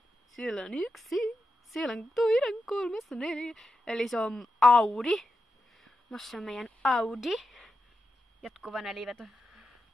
Siellä on 1, siellä on toinen, 3, 4. Eli se on Audi. Mosse on meidän Audi. Jatkuva neliveto.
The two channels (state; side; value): normal; both; correlation 0.88